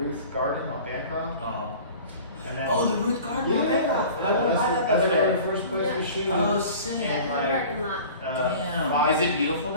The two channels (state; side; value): inverted; both; correlation -0.42